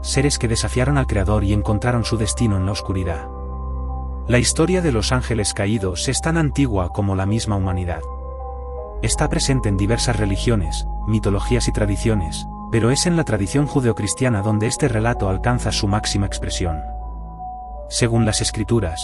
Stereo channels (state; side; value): identical; both; correlation 1.00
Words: seres que desafiaron al Creador y encontraron su destino en la oscuridad. La historia de los ángeles caídos es tan antigua como la misma humanidad. Está presente en diversas religiones, mitologías y tradiciones, pero es en la tradición judeocristiana donde este relato alcanza su máxima expresión. Según las